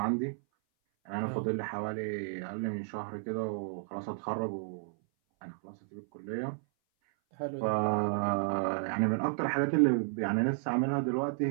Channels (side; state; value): left; silent; 56 dB below the other